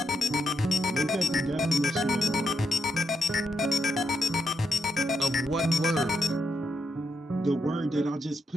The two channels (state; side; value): normal; both; correlation 0.81